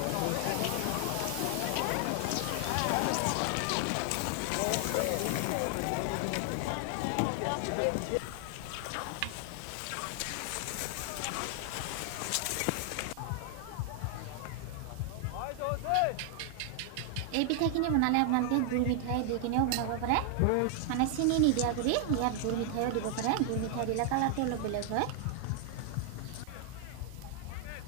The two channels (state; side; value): different; both; correlation 0.00